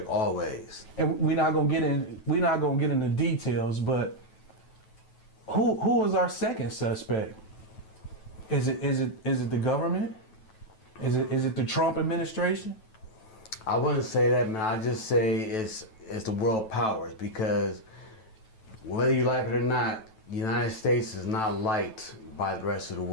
always. And we're not gonna get into details, but who is our second suspect? Is it the government? Is it the Trump administration? I wouldn't say that, man. I just say it's the world powers, because whether you like it or not, the United States is not liked by the rest of the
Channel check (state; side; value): late; right; 9.2 ms